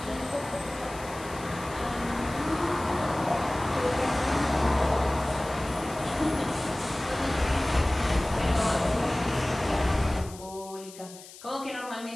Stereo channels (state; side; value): noise; left; hiss, 17 dB below the sound